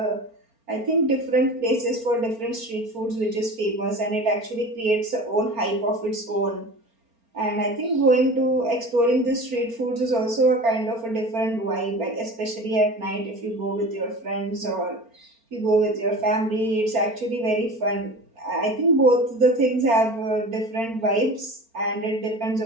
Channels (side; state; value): left; late; 4.4 ms